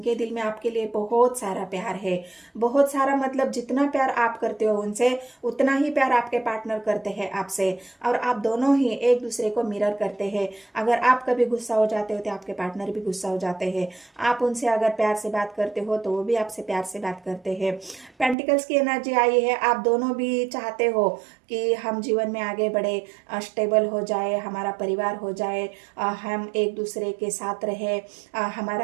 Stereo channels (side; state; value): left; drops out; at 18.4 s